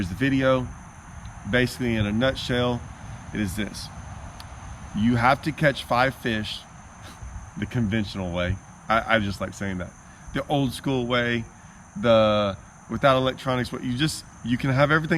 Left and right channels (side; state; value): both; identical; correlation 1.00